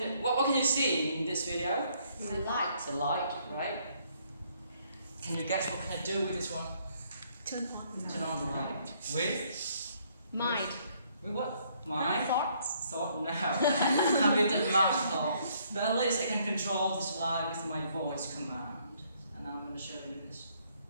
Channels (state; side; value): inverted; both; correlation -0.67